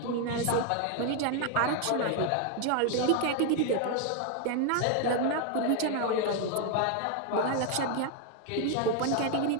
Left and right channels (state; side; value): different; both; correlation 0.00